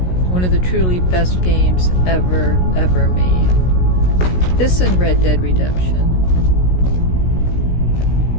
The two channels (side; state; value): right; late; 16 ms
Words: of the truly best games ever made. This and Red Dead Redemption.